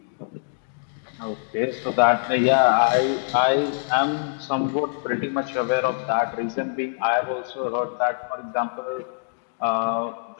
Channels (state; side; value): silent; right; digital silence